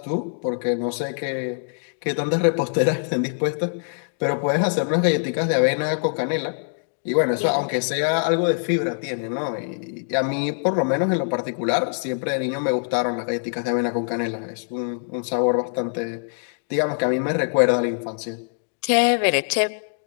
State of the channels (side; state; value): right; silent; digital silence